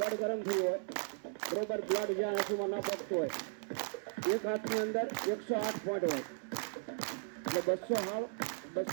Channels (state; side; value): silent; left; 53 dB below the other